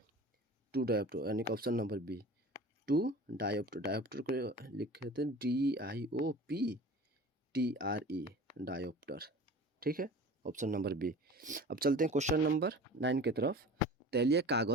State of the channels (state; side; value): normal; both; correlation 0.39